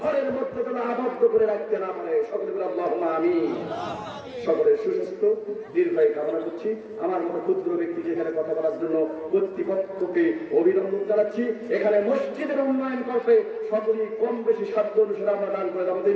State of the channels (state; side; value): identical; both; correlation 1.00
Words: মধ্যে যেন আবদ্ধ করে রাখতে না পারে। সকলে বলে আল্লাহুম্মা আমিন। সকলের সুস্বাস্থ্য দীর্ঘায়ু কামনা করছি। আমার মতো ক্ষুদ্র ব্যক্তিকে এখানে কথা বলার জন্য কর্তৃপক্ষকে অভিনন্দন জানাচ্ছি। এখানে মসজিদের উন্নয়ন করতে সকলেই কম বেশি সাধ্য অনুসারে আমরা দান করে যাবো